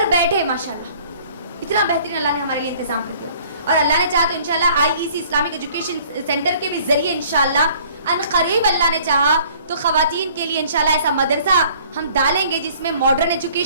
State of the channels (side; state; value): both; inverted; correlation -0.55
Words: بیٹھے ماشاءاللہ اتنا بہترین اللہ نے ہمارے لیے انتظام کر دیا. اور اللہ نے چاہا تو انشاءاللہ IEC اسلامک ایجوکیشن سینٹر کے بھی ذریعے انشاءاللہ ان قریب اللہ نے چاہا تو خواتین کے لیے انشاءاللہ ایسا مدرسہ ہم ڈالیں گے جس میں ماڈرن